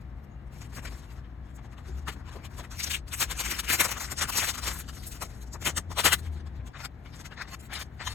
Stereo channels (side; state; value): right; quieter; 5.9 dB